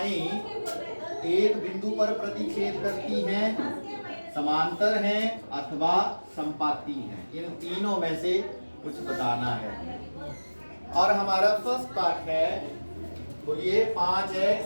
एक बिंदु पर प्रतिच्छेद करती हैं, समांतर हैं अथवा संपाती हैं। इन तीनों में से कुछ बताना है। और हमारा फर्स्ट पार्ट है, बोलिए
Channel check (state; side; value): inverted; both; correlation -1.00